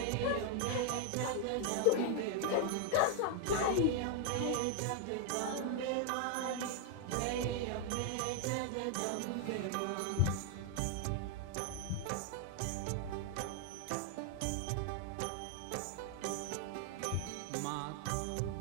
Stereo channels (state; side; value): different; both; correlation 0.00